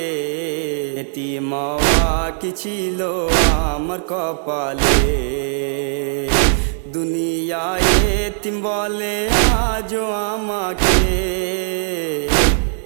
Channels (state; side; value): silent; left; digital silence